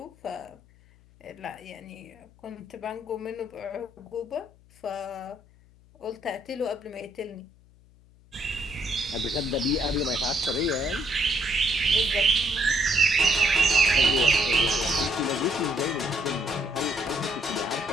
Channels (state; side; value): noise; left; hum, 27 dB below the sound